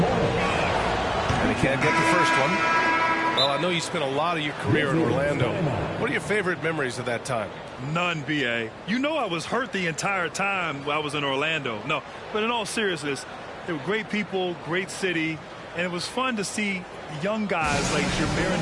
And he can't get the first one. Well, I know you spent a lot of your career in Orlando. What are your favorite memories of that time? None, B.A. You know I was hurt the entire time I was in Orlando. No, but in all seriousness, they were great people, great city, and it was fun to see young guys like Jameer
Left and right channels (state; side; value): identical; both; correlation 1.00